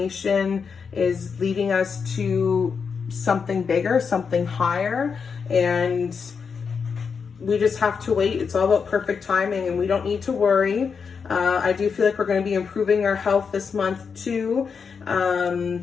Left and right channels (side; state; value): right; quieter; 5.9 dB